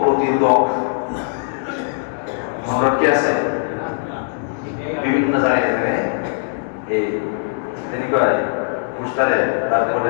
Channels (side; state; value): right; silent; digital silence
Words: প্রতিরোধক। রড কি আছে বিভিন্ন জায়গায় এই পোস্টারে